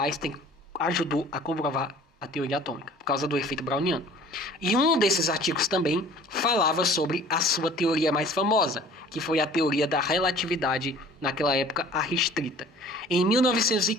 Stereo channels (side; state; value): both; normal; correlation 0.49